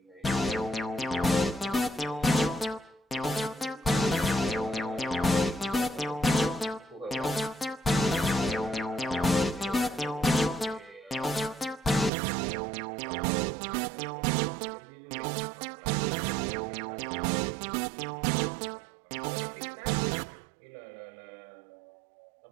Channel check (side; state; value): left; drops out; at 12.1 s